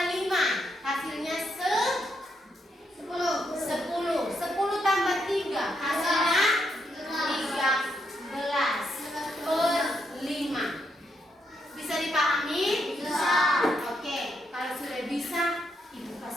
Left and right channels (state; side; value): normal; both; correlation 0.78